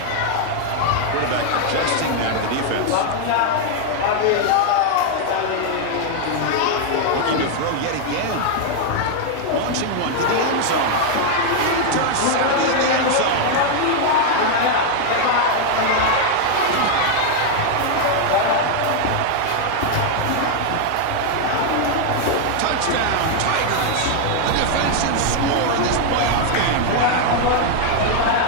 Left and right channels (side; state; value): both; different; correlation 0.00